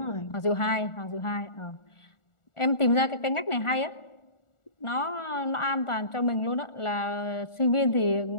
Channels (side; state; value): right; late; 1.4 ms